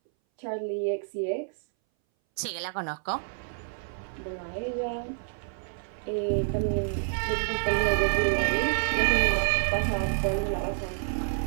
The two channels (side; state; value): left; silent; 59 dB below the other